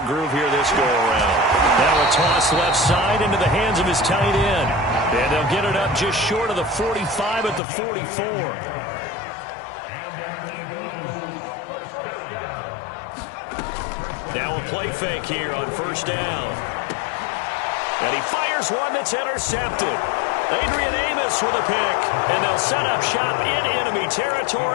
groove here this go-around. Now a toss left side into the hands of his tight end. And they'll get it up just short of the 45 at the 44. Now a play fake here on first down. And he fires one that's intercepted. Adrian Amos with a pick. And they'll set up shop in enemy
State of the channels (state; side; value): drops out; right; at 7.6 s